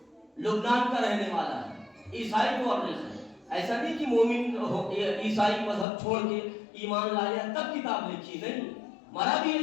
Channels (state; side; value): drops out; right; at 5.9 s